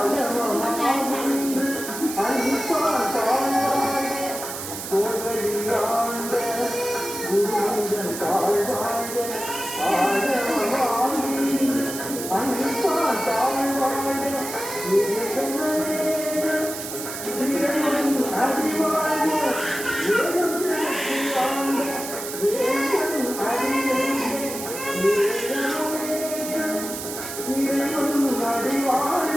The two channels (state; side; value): noise; right; hiss, 8 dB below the sound